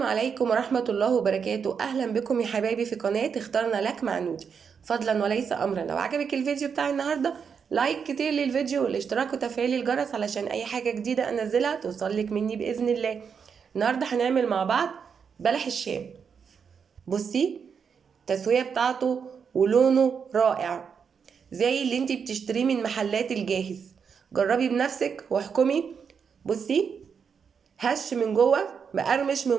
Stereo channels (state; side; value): quieter; left; 6.5 dB